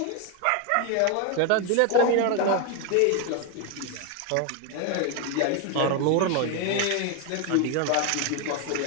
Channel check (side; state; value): both; different; correlation 0.01